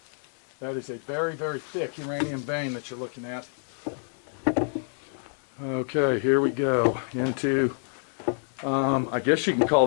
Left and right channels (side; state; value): right; silent; 60 dB below the other